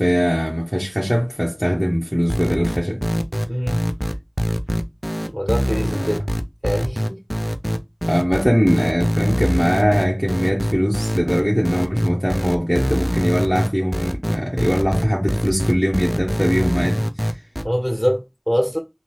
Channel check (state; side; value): identical; both; correlation 1.00